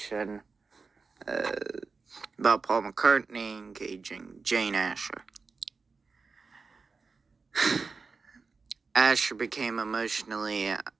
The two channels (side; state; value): left; quieter; 4.6 dB